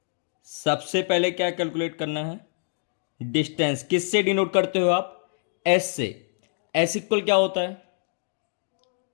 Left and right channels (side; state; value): right; silent; digital silence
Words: सबसे पहले क्या कैलकुलेट करना है, डिस्टेंस। किससे डिनोट करते हो आप, एस से। एस इक्वल क्या होता है,